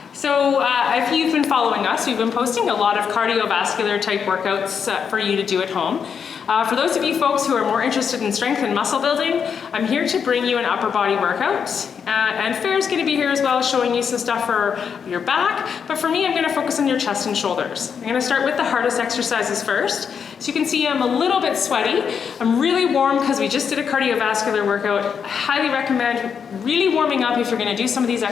So if you've been following us, we've been posting a lot of cardiovascular type workouts for you to do at home. For those of you folks who are more interested in strength and muscle building, I'm here to bring you an upper body workout. And Fair's going to be here as well, showing you some stuff for your back. But for me, I'm going to focus on your chest and shoulders. I'm going to start with the hardest exercises first. So you can see I'm a little bit sweaty. I'm really warm because we just did a cardiovascular workout. I highly recommend really warming up if you're going to do some of these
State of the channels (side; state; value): right; quieter; 6.9 dB